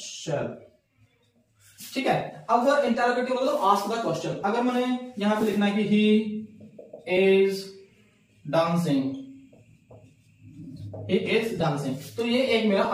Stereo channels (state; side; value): identical; both; correlation 1.00